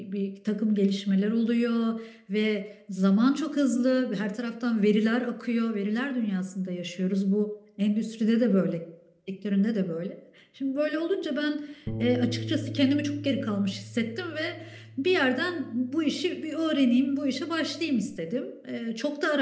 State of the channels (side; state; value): both; identical; correlation 1.00